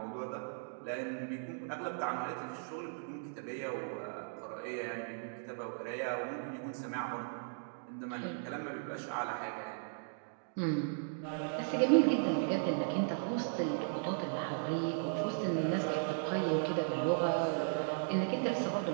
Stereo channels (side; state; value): left; silent; digital silence